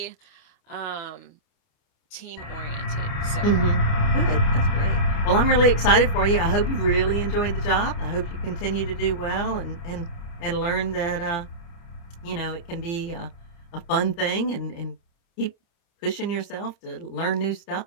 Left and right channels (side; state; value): right; late; 29 ms